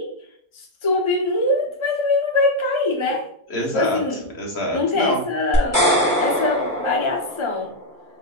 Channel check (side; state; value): both; normal; correlation 0.01